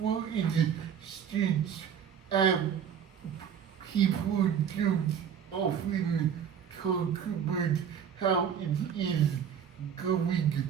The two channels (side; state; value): left; quieter; 8.1 dB